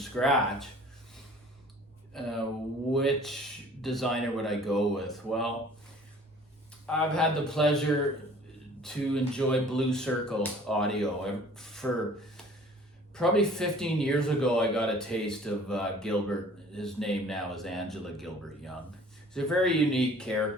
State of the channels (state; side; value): normal; both; correlation 0.50